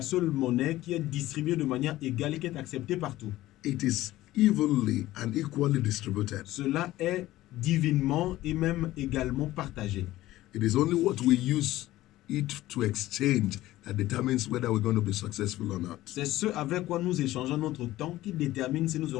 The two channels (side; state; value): right; quieter; 16.0 dB